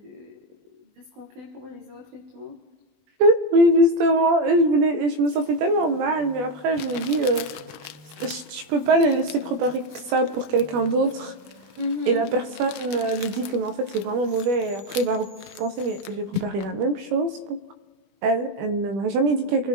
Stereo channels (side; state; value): left; late; 21 ms